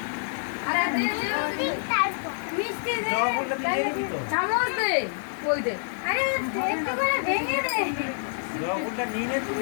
মিষ্টি দে, চামচ দে, ওই দে। আরে একটু করে ভেঙে দে। লবণটা নিয়ে নে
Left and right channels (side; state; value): right; silent; digital silence